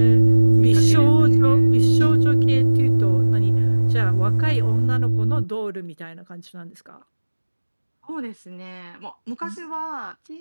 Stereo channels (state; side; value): inverted; both; correlation -1.00